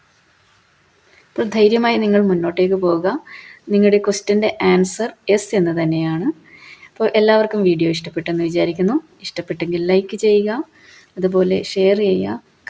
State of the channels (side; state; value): both; identical; correlation 1.00